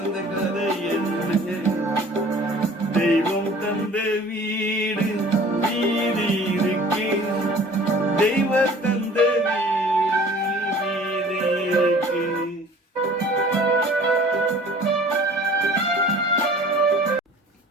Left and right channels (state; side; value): normal; both; correlation 0.48